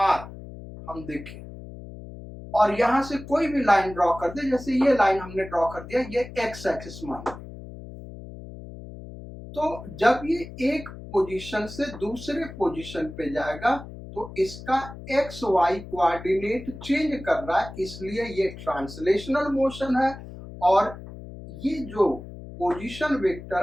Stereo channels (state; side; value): noise; left; hum, 13 dB below the sound